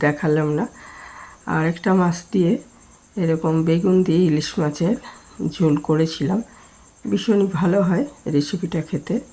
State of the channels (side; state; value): both; identical; correlation 1.00